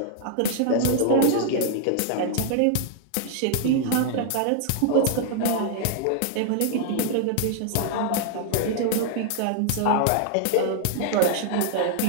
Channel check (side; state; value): both; different; correlation 0.00